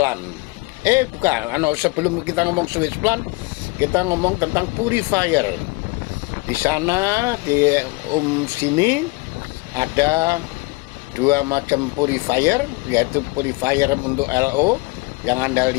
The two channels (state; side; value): quieter; right; 25.1 dB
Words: Bukan, sebelum kita ngomong switch plan, kita ngomong tentang purifier. Di sana di sini ada 2 macam purifier, yaitu purifier untuk LO. Yang Anda